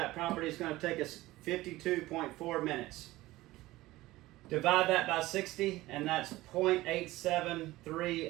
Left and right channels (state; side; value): quieter; left; 18.0 dB